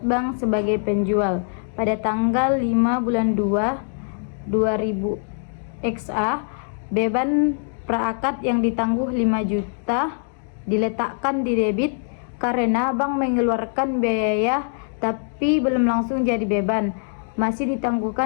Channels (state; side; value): silent; right; digital silence